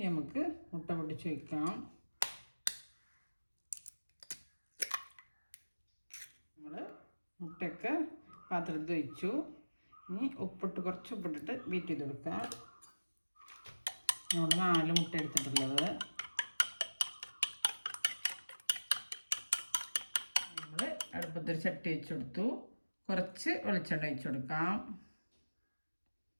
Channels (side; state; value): both; inverted; correlation -1.00